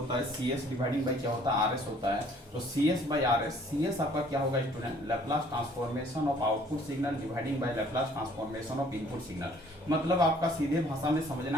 है सीएस डिवाइडिंग बाई क्या होता है, आरएस होता है। तो सीएस बाई आरएस, सीएस आपका क्या होगा student, Laplace transformation of output signal dividing by Laplace transformation of input signal. मतलब आपका सीधे भाषा में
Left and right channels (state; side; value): normal; both; correlation 0.58